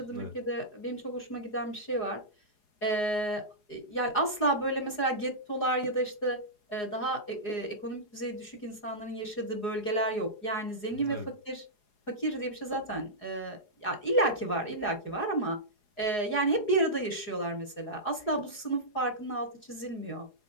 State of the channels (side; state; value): right; late; 4.8 ms